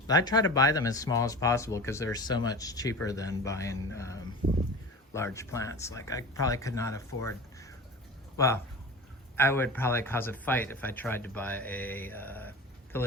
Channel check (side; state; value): both; normal; correlation 0.34